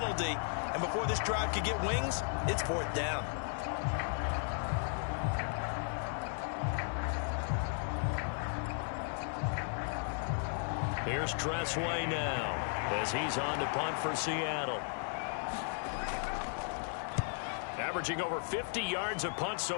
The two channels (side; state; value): right; silent; 54 dB below the other